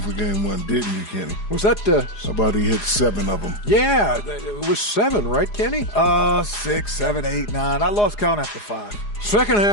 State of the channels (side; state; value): right; late; 4.8 ms